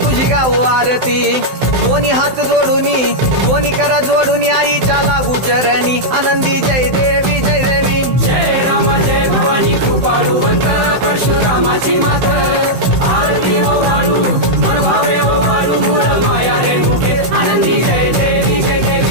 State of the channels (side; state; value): left; late; 16 ms